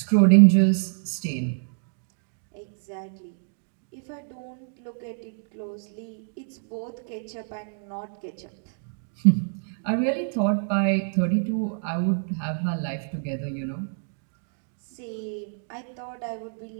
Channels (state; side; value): silent; left; digital silence